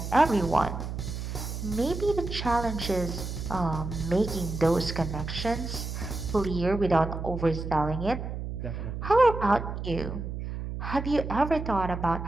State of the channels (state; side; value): noise; right; hum, 6 dB below the sound